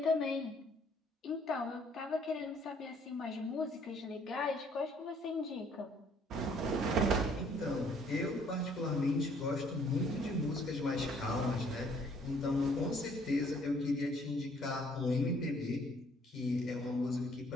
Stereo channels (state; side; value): normal; both; correlation 0.62